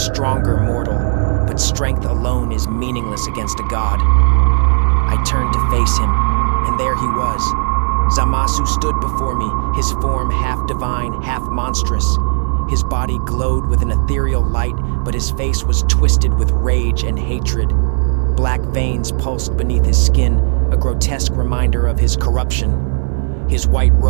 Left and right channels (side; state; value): left; silent; digital silence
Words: mortal, but strength alone is meaningless against a god." I turned to face him, and there he was. Zamasu stood before me, his form half divine, half monstrous. His body glowed with an ethereal light, but his face was twisted with rage and hatred. Black veins pulsed beneath his skin, a grotesque reminder of his corruption. His white